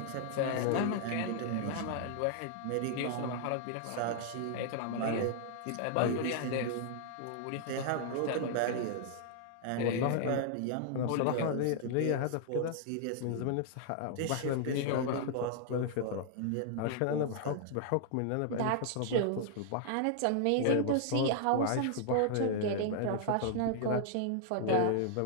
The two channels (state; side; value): different; both; correlation -0.01